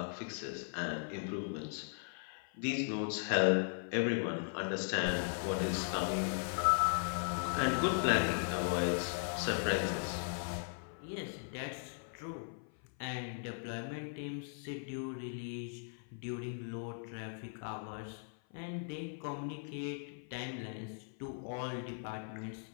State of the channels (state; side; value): silent; right; 52 dB below the other